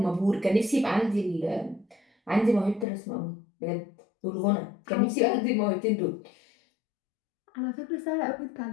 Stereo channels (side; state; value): right; drops out; at 2.9 s